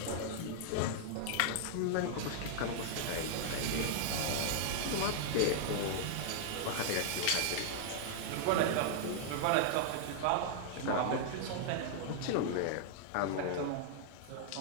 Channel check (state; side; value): different; both; correlation -0.01